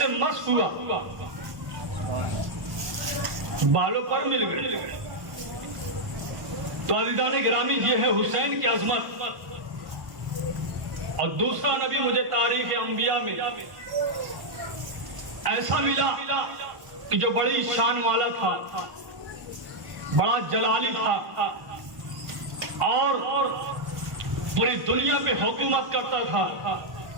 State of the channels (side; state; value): left; late; 1.1 ms